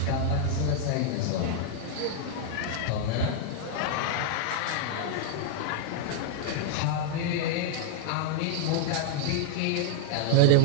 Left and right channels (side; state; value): both; different; correlation -0.01